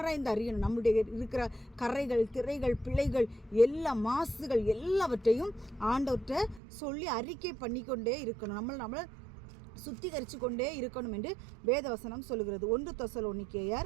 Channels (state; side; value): drops out; left; at 6.6 s